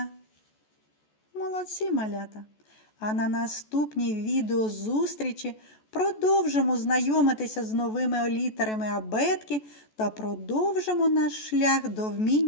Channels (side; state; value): right; late; 14 ms